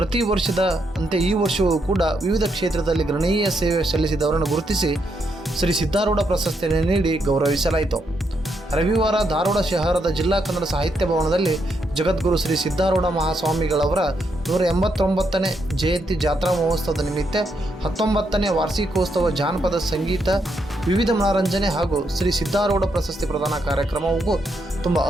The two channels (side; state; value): both; normal; correlation 0.79